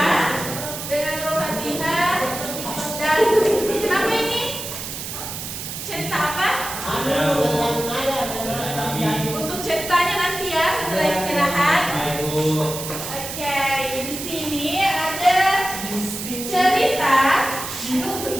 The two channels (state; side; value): noise; right; hiss, 7 dB below the sound